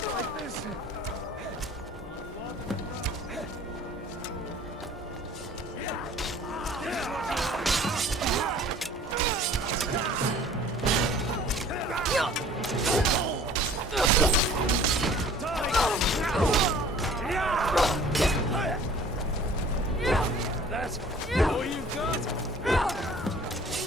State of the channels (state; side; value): normal; both; correlation 0.50